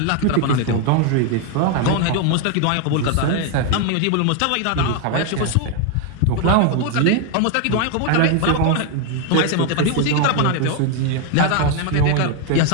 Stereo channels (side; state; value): both; different; correlation 0.01